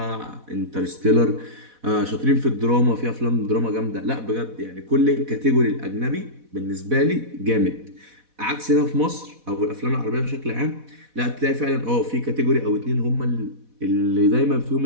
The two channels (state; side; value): late; left; 4.1 ms